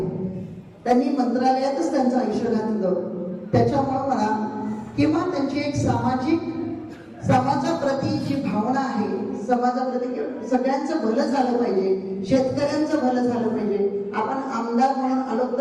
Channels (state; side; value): identical; both; correlation 1.00